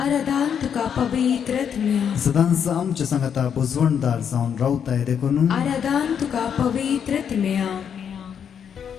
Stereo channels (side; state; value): right; quieter; 7.9 dB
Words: आराधन तुका पवित्र आत्म्या सदांच आमच्या सांगाता बुजवणदार जावन रावताय देखून आराधन तुका पवित्र आत्म्या